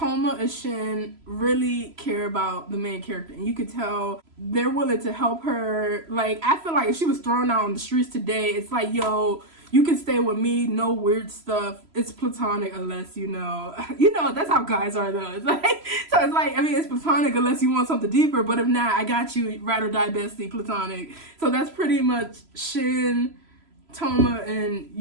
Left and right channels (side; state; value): left; late; 3.0 ms